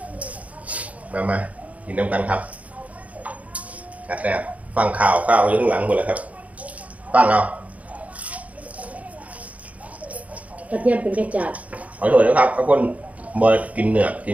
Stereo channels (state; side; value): late; left; 0.069 ms